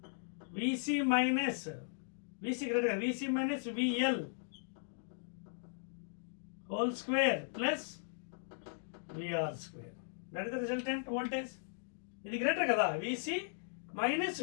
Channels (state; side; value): silent; right; digital silence